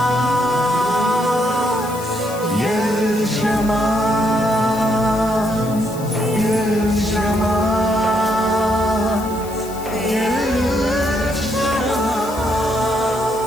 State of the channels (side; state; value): left; noise; hiss, 17 dB below the sound